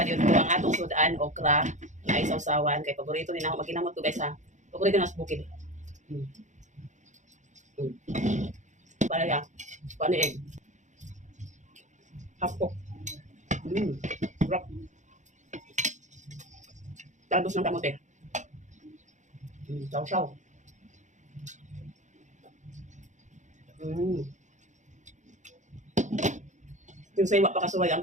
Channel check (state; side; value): late; left; 0.35 ms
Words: ko ang atong sudan, okra, na isaw-sawan. Kay paborito din ako maginamot ko guys ha. Paborito na sa bukid. Para ya, paniig. Hapok. Sarap. Talbos ng kamote. Saw-saw. Yung sa iwa pa kasuway, ang